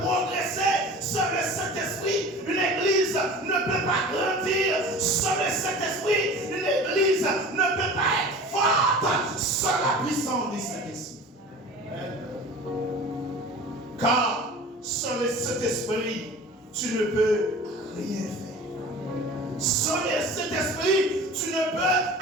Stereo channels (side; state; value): both; normal; correlation 0.39